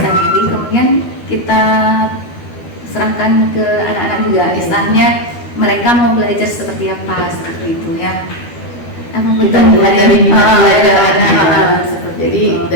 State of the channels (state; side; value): late; right; 12 ms